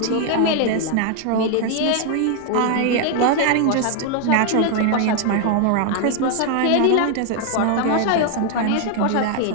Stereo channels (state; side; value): different; both; correlation 0.01